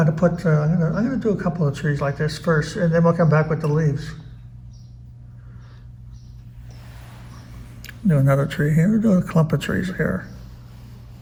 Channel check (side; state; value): both; identical; correlation 1.00